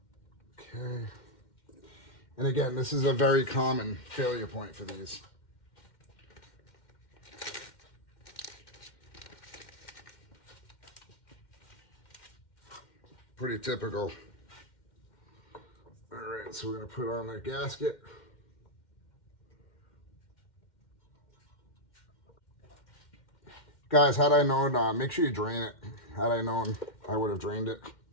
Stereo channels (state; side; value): late; right; 2.1 ms